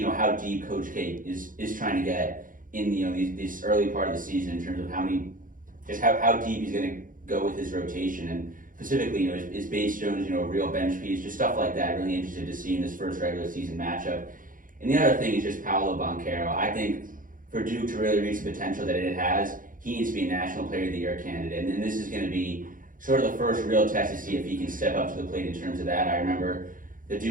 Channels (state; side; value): late; left; 0.39 ms